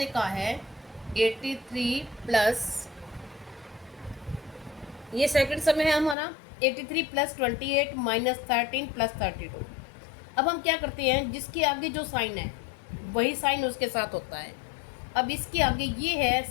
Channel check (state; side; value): drops out; right; at 6.2 s